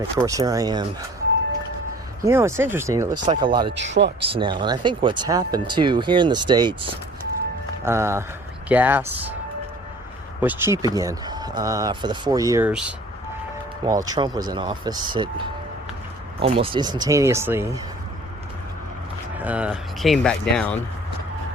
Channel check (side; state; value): both; normal; correlation 0.50